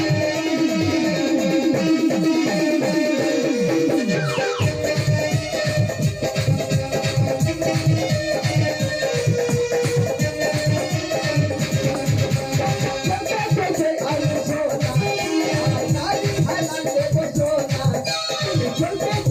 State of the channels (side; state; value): both; identical; correlation 1.00